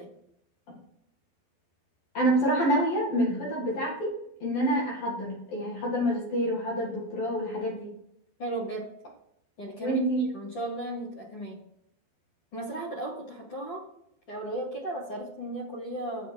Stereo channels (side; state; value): right; late; 12 ms